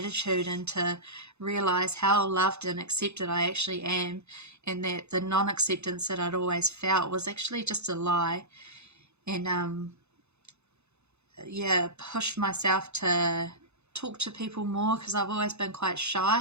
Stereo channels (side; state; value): left; late; 0.81 ms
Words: and to realize how loved and accepted I actually am, and that the non-acceptance that I'd always felt was actually just a lie. And pushed myself to talk to people more because I've always been quite